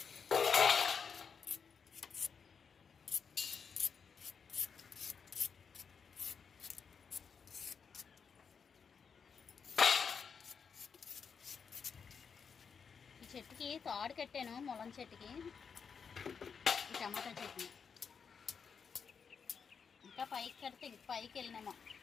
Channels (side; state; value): right; quieter; 6.2 dB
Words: చెట్టుకి తాడు కట్టాను, ములం చెట్టుకి. ఈ టమాటా చెట్టుని ఇంకా పైకి కడితే ఇంక పైకి వెళ్ళినామో.